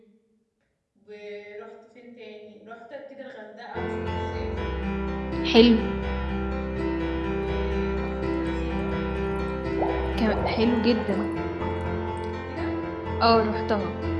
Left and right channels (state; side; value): identical; both; correlation 1.00